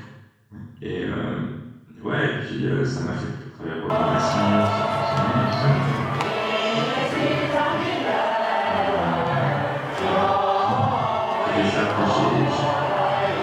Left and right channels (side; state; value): both; identical; correlation 1.00